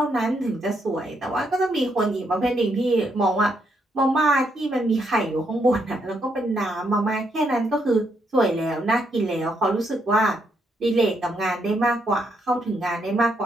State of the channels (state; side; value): normal; both; correlation 0.76